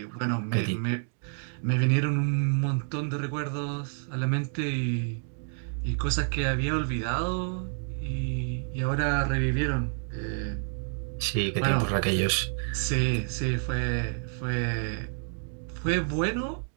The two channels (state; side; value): silent; left; 59 dB below the other